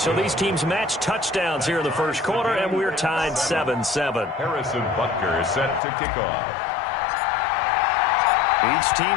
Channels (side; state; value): right; drops out; at 5.8 s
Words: these teams match touchdowns here in the first quarter, and we're tied 7-7. Harrison Butker is set to kick off. Each